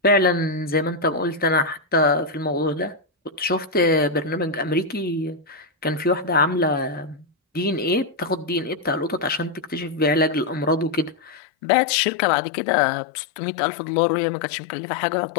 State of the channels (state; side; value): drops out; right; at 11.4 s